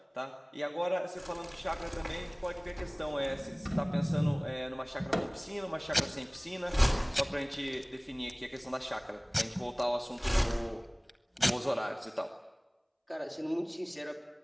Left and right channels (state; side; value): identical; both; correlation 1.00